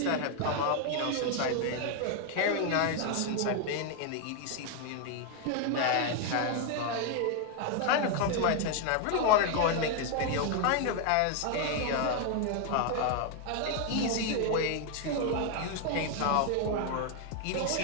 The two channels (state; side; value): different; both; correlation 0.01